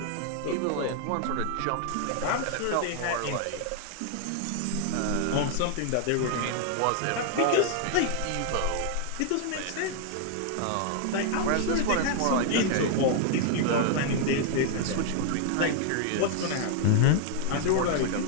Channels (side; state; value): both; different; correlation 0.00